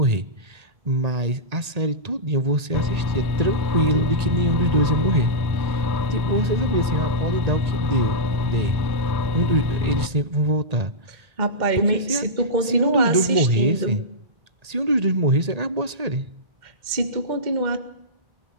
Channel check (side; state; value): left; late; 1.8 ms